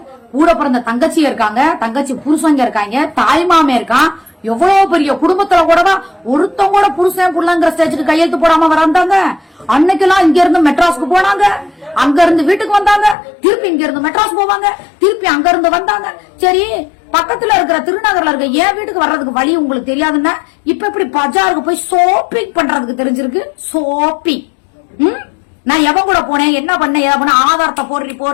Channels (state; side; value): drops out; right; at 13.2 s